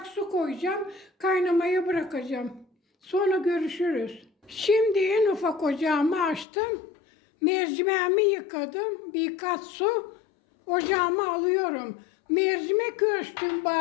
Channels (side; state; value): right; drops out; at 6.5 s